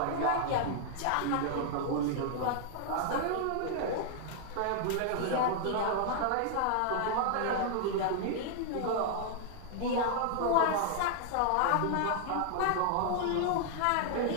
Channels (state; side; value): different; both; correlation 0.00